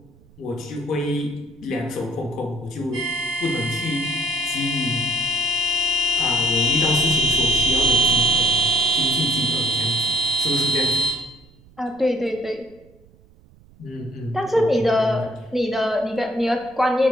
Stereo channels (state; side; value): noise; right; rumble, 27 dB below the sound